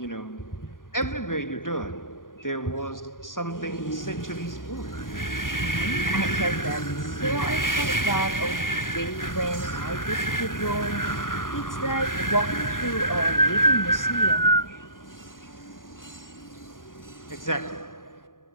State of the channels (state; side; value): late; right; 0.89 ms